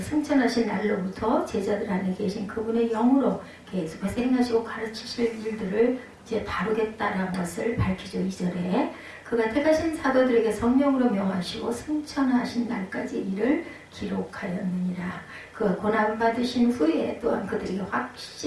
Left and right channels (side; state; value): both; identical; correlation 1.00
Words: 승천하신 날로부터 제자들 안에 계신 그분의 영으로 계속해서 행하시고 가르치실 일들을 이제 다루겠다라는 것을 밝히죠. 2절에 그가 택하신 사도들에게 성령으로 명하시고 승천하신 날까지 이를 기록하였느니라. 그가 고난을 받으신 후에 또한 그들에게